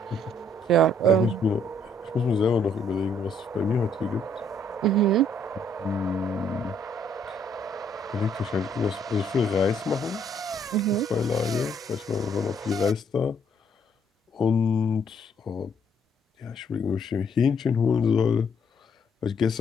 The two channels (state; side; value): normal; both; correlation 0.67